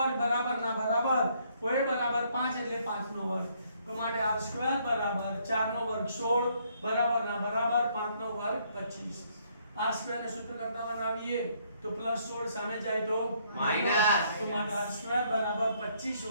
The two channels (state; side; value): inverted; both; correlation -0.68